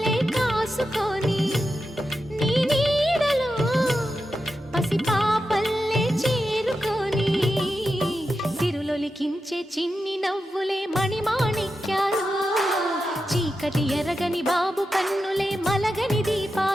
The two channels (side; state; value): both; normal; correlation 0.89